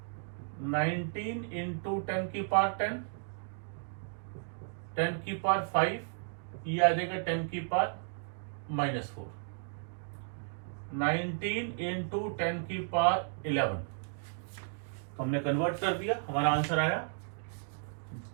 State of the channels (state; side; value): silent; left; digital silence